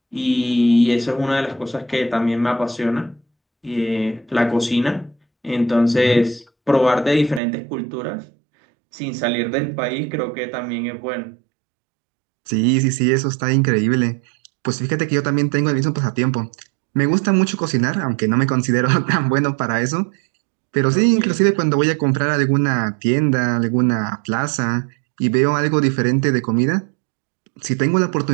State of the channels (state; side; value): drops out; left; at 7.4 s